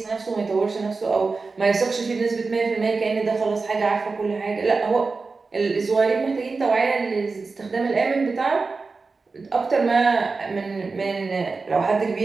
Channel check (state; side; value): quieter; left; 4.2 dB